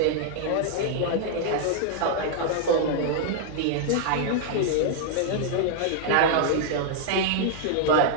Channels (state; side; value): different; both; correlation -0.01